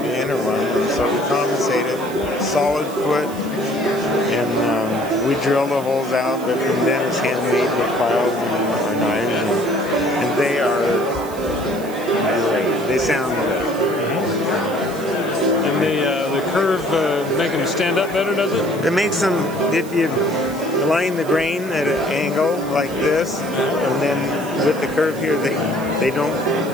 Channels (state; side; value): noise; right; hiss, 18 dB below the sound